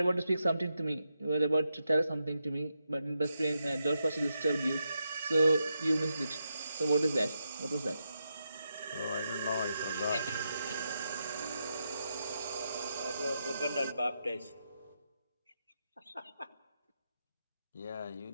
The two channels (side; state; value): both; inverted; correlation -0.85